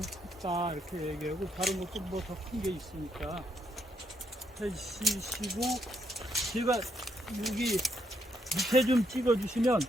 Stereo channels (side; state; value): both; normal; correlation 0.76